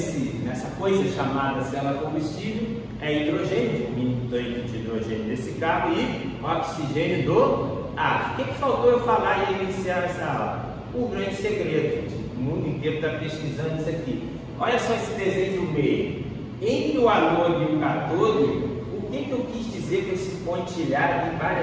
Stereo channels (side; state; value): both; identical; correlation 1.00